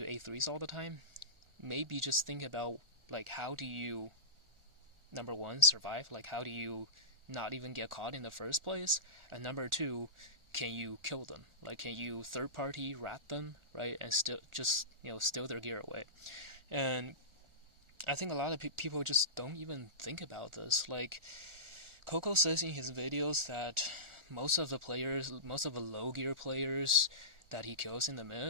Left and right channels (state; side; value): late; left; 1.4 ms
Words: A3s all the time, maybe just think about like how do you, number one, survive? Like how do you not even get caught in the first place? And number two, can you kill them? Like, can you third-party rat them, right? And still just, steal their gear away. And I think a lot of people just don't even think about this. Like, Coco says in his videos that most of the low gear players that he kills in the